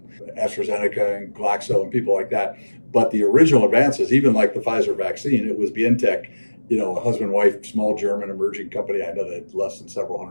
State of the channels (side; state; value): both; inverted; correlation -1.00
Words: AstraZeneca and Glaxo and people like that. But the original advances, even like the Pfizer vaccine, it was Vieth, a husband-wife, small German emerging company. I know that less than several